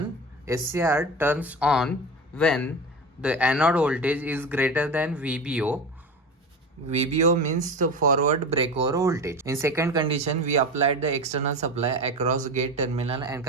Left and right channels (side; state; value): both; normal; correlation 0.27